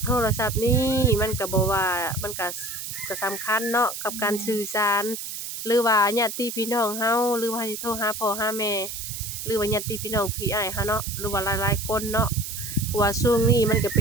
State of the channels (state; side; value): noise; right; hiss, 7 dB below the sound